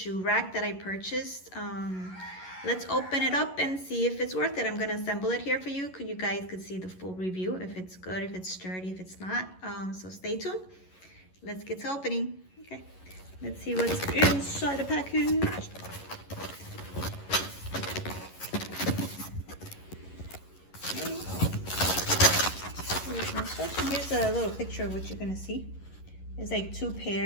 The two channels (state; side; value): late; right; 11 ms